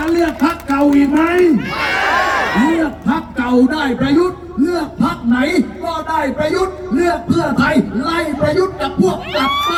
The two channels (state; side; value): identical; both; correlation 1.00